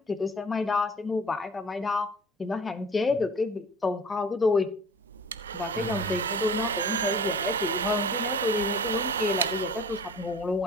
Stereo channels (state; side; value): normal; both; correlation 0.44